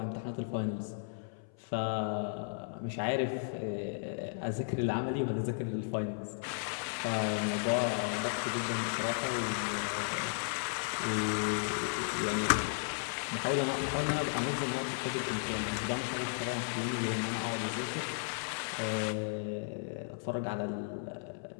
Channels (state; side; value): silent; right; 55 dB below the other